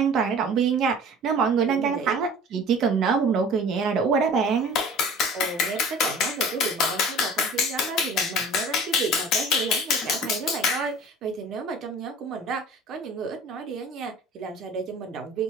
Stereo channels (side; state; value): both; normal; correlation 0.44